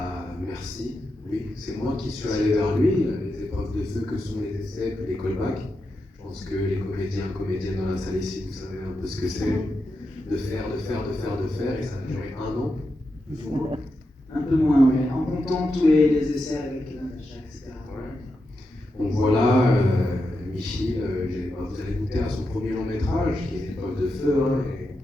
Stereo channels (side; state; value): both; normal; correlation 0.87